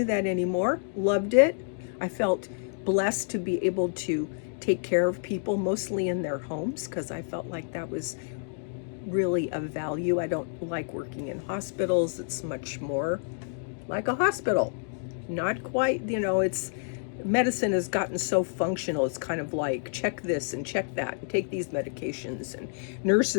that anymore. Loved it. I felt blessed to be able to take care of people, mostly in their homes, because I felt like that was really of value. I don't like working in hospitals. It's much more like a hospital. Not quite, it's medicine has gotten so functional. It's kind of like check this and check that and take these medications, and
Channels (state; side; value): silent; right; digital silence